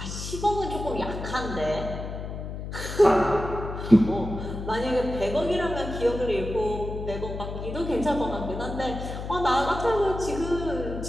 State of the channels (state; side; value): noise; left; hum, 7 dB below the sound